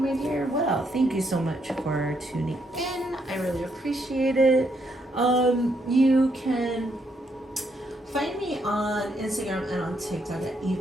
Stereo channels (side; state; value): both; normal; correlation 0.75